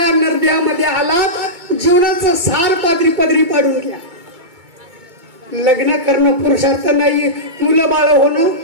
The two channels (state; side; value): late; left; 2.2 ms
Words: नरड्यामध्ये आलात जीवनाचं सार पदरी पाडून घ्या. लग्न करणं पुरुषार्थ नाहीये, मुलं बाळ होणं